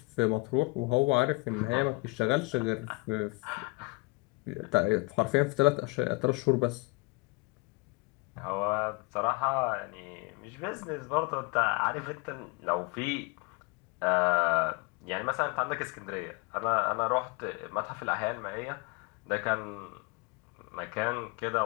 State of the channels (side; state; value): right; quieter; 26.9 dB